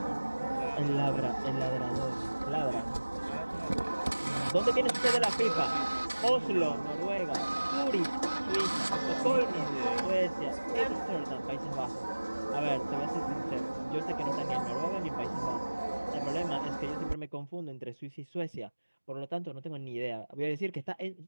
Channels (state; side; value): inverted; both; correlation -1.00